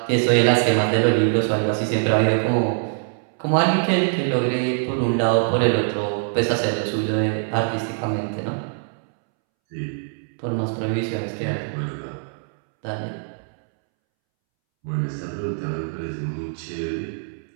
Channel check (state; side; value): silent; left; 63 dB below the other